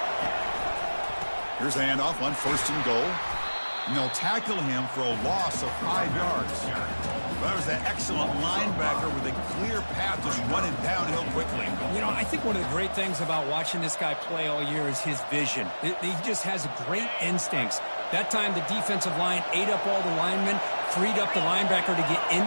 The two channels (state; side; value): inverted; both; correlation -1.00